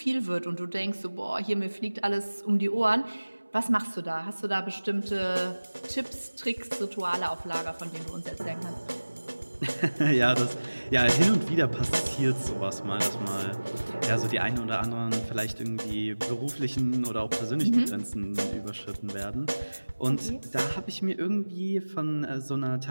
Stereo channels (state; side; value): inverted; both; correlation -1.00